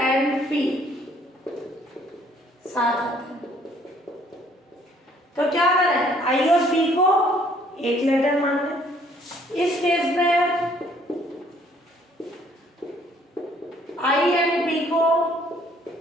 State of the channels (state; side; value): normal; both; correlation 0.61